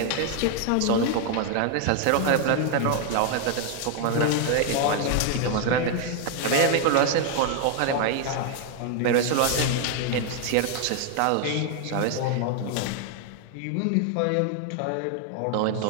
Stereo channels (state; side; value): different; both; correlation 0.00